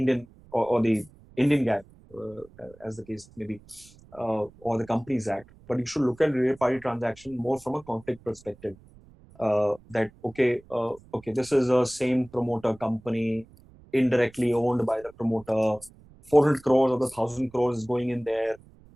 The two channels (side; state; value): right; noise; rumble, 25 dB below the sound